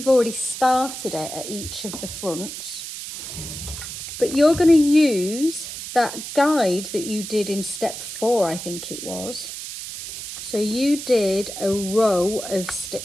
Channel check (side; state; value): right; noise; hiss, 9 dB below the sound